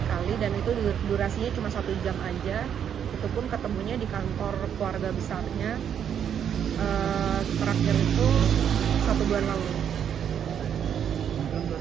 kali dan itu durasinya cuma 1 jam aja, itu pun ketemunya di kantor keluarga besarnya, terakhir itu 1 bulan lalu. kan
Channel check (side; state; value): left; quieter; 8.7 dB